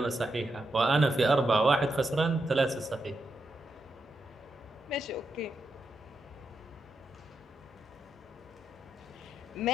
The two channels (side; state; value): both; normal; correlation 0.84